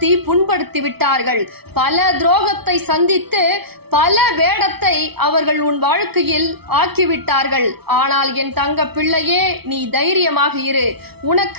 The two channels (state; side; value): late; left; 0.97 ms